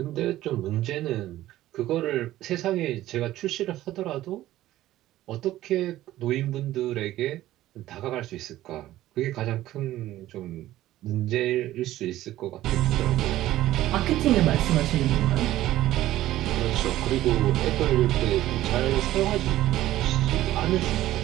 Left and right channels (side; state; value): left; quieter; 14.7 dB